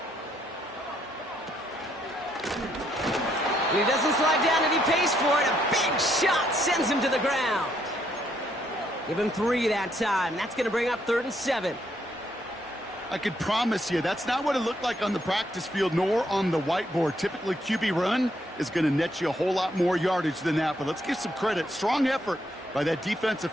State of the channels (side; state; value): both; normal; correlation 0.73